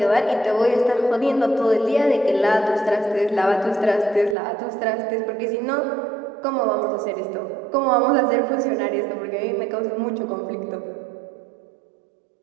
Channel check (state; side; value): drops out; left; at 4.4 s